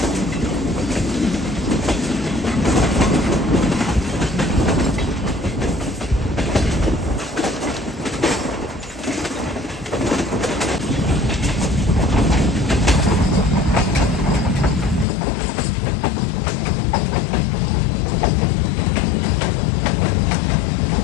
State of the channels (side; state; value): right; drops out; at 15.1 s